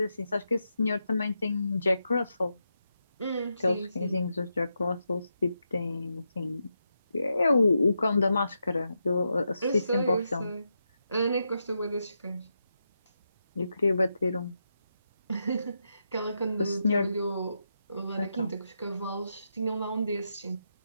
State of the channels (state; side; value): inverted; both; correlation -0.85